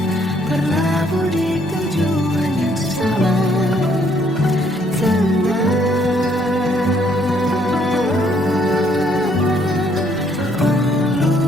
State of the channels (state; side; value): normal; both; correlation 0.67